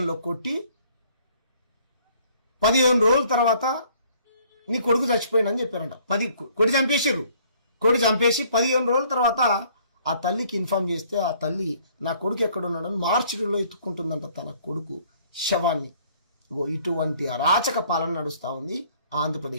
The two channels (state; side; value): inverted; both; correlation -0.60